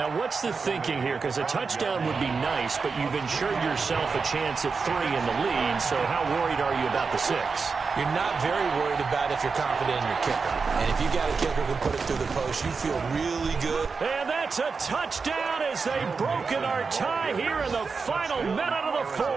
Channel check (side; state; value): left; quieter; 4.9 dB